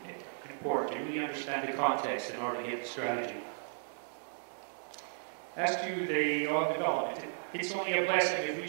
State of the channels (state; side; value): silent; left; digital silence